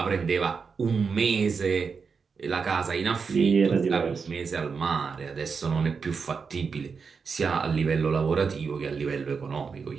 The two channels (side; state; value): left; quieter; 5.4 dB